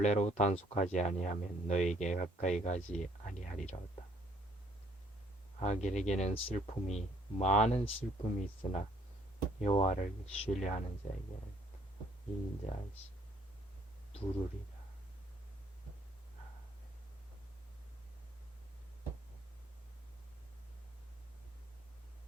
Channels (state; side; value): normal; both; correlation 0.65